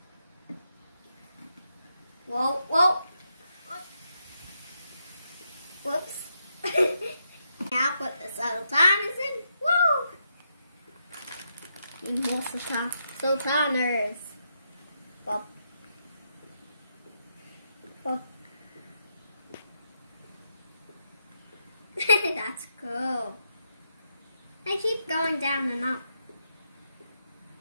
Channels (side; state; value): both; inverted; correlation -0.81